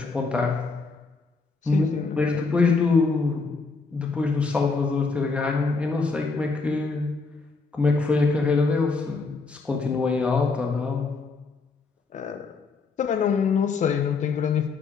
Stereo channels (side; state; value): right; quieter; 4.2 dB